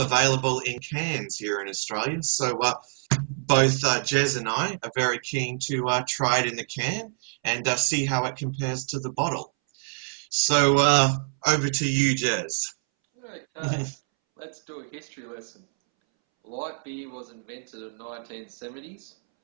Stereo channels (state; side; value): silent; left; 61 dB below the other